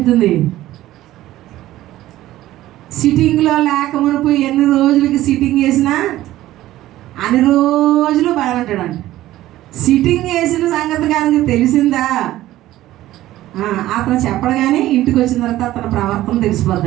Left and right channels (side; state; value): left; quieter; 15.0 dB